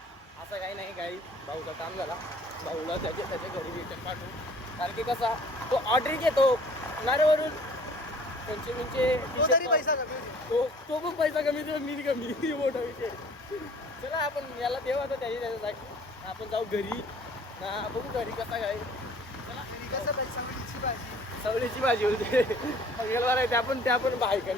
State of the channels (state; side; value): normal; both; correlation 0.52